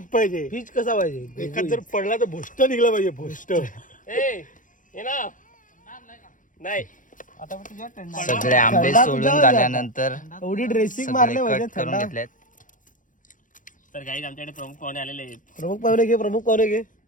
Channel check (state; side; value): late; right; 0.38 ms